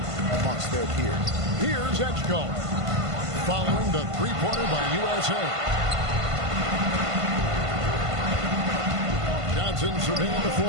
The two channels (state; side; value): late; left; 1.5 ms